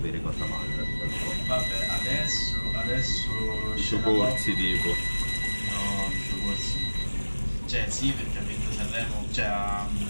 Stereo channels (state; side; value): inverted; both; correlation -1.00